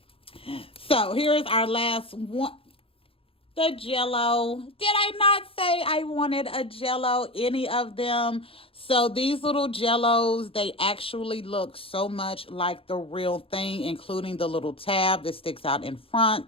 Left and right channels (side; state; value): right; late; 0.27 ms